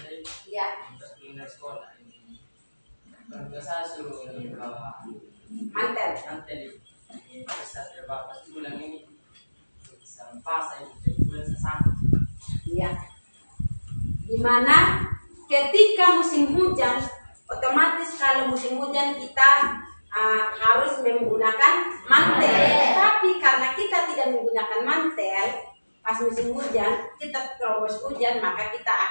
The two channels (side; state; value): both; inverted; correlation -1.00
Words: ya, untuk pindah sekolah ini. Keluarga saya suruh bawa mantel. nanti ini bisa terbatas bulan ini bisa pas saya bulan sesakit. Ya. Dimana ketika musim hujan, otomatis kalau musim hujan kita harus menggunakan mantel. Tapi karena kita tidak menggunakan mantel pas musim hujan, kita terobos hujan, maka kita